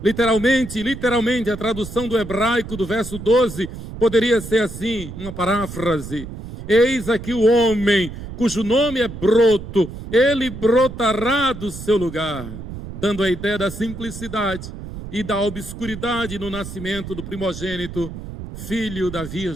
Literalmente, a tradução do hebraico do verso 12 poderia ser assim, uma paráfrase. Eis aqui o homem cujo nome é broto, ele brotará do seu lugar, dando a ideia da simplicidade e da obscuridade no nascimento do primogênito, filho da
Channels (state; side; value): noise; right; rumble, 11 dB below the sound